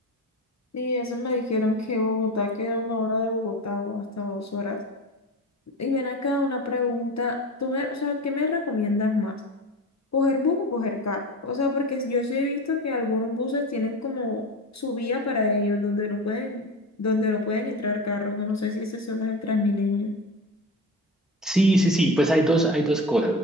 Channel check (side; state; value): both; normal; correlation 0.28